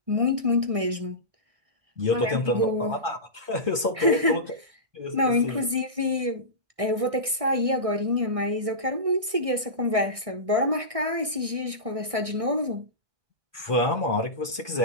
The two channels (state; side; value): late; left; 1.6 ms